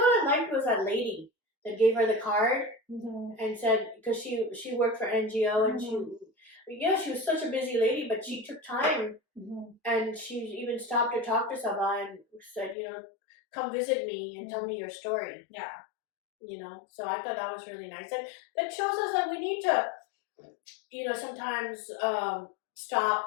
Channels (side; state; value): right; drops out; at 12.8 s